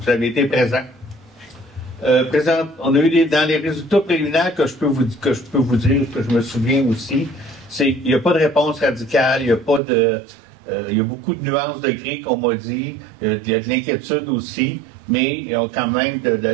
avez été présents. On a eu dans les résultats préliminaires que je peux vous dire, que je me souviens aussi, c'est qu'il n'y a pas de réponse radicale, il y a pas de... il y a beaucoup de nuances de gris qu'on m'a dit, il y a de l'inquiétude aussi, mais il y a quand même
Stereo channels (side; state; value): left; drops out; at 9.8 s